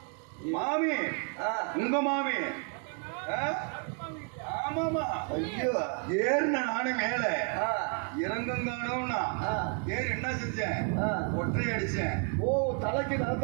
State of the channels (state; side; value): quieter; left; 39.9 dB